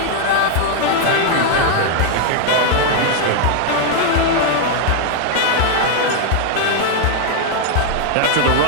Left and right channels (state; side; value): different; both; correlation 0.00